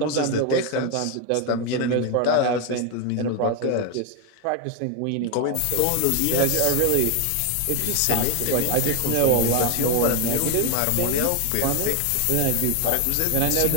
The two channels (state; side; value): different; both; correlation 0.01